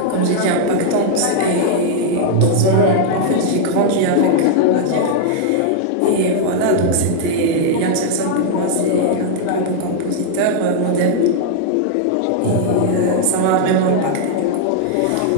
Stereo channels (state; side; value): different; both; correlation -0.01